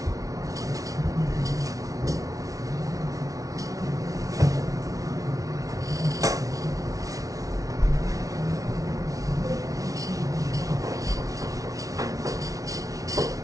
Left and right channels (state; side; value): late; left; 0.17 ms